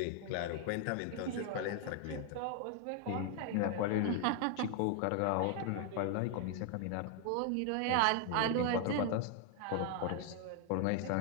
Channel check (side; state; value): both; different; correlation 0.00